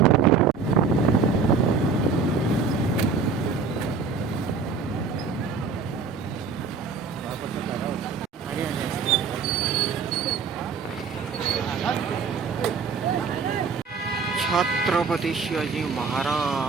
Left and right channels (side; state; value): left; quieter; 5.1 dB